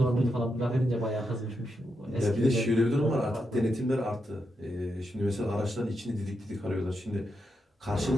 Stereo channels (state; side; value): normal; both; correlation 0.84